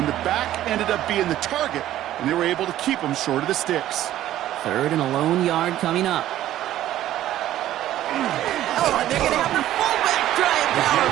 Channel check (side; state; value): left; quieter; 13.2 dB